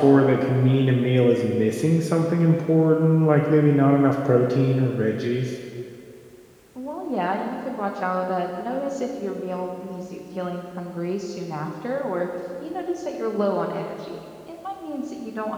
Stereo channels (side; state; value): both; identical; correlation 1.00